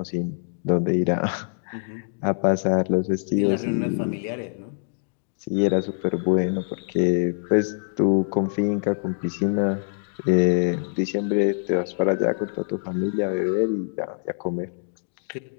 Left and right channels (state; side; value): silent; right; digital silence